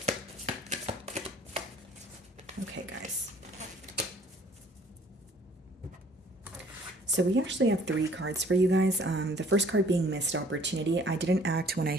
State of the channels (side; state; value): both; normal; correlation 0.55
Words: Okay, guys. So we actually have three cards for you guys. The first card being missed opportunity. I didn't act when I